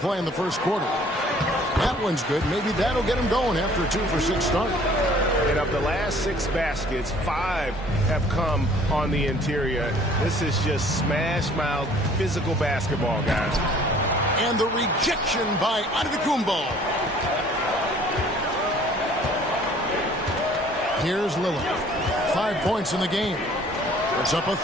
in the first quarter. That one's good. Maybe that'll get him going after a 2-for-6 start. And of the last 6 baskets, 5 have come on the interior. This is just smash-mouth physical basketball, guys. And the rejection by Antetokounmpo. Here's Lillard. 5 points in the game. Puts up a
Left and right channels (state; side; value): normal; both; correlation 0.54